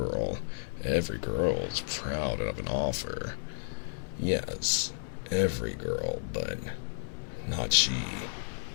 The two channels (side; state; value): right; silent; digital silence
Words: Every girl is proud of an offer. Yes, every girl, but not she.